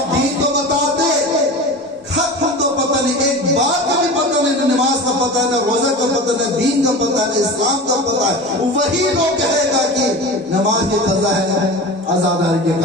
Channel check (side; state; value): both; normal; correlation 0.31